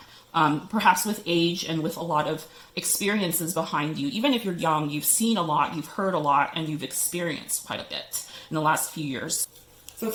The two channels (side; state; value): both; identical; correlation 1.00